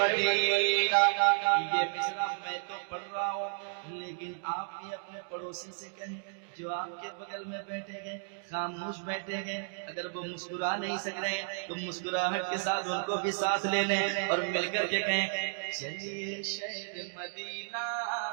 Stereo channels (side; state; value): left; silent; digital silence